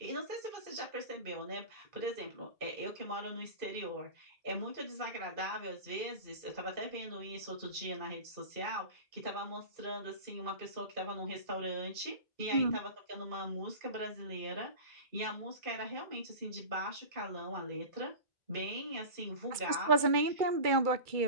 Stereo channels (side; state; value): left; late; 2.3 ms